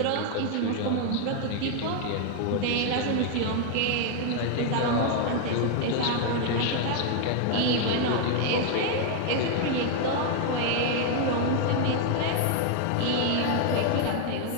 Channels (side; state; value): both; different; correlation 0.00